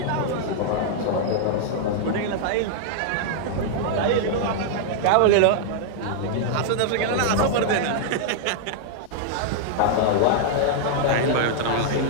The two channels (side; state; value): both; different; correlation -0.01